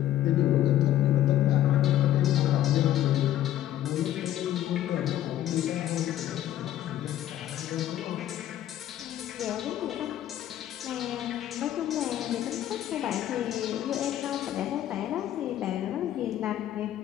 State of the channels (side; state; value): right; quieter; 12.3 dB